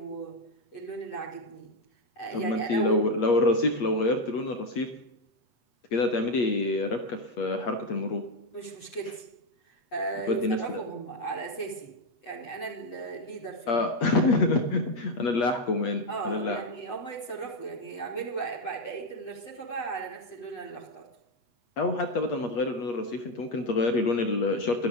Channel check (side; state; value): right; late; 8.0 ms